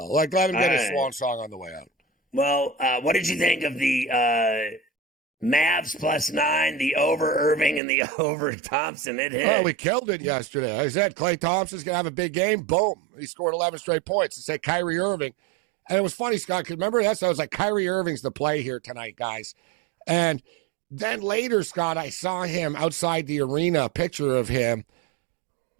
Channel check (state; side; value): drops out; left; at 7.8 s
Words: Like, let him get a swan song on the way out. Well, what did you think of the Mavs +9, the over Irving and the over Thompson? It hit. Oh, we killed it yesterday. I said Klay Thompson's gonna have a big game. Boom! He scored 11 straight points. I said Kyrie Irving, and it was funny, Scott. Cause remember that? I was like, Kyrie Irving's the play here tonight, guys, and. Then later, Scott, I saw him outside the arena, a picture of him